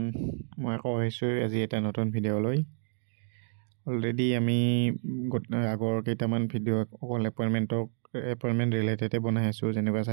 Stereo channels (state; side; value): silent; left; digital silence